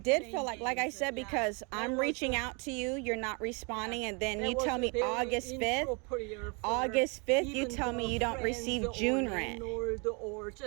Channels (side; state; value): left; quieter; 32.8 dB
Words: feel like I said, because I'm reaching out to you, you're not responding, and then you tell me August 5th. August 5th, you tell me you don't receive June rent. Or